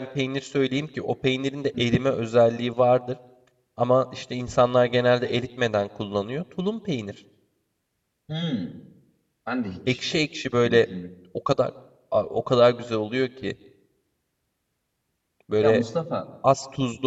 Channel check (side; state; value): both; identical; correlation 1.00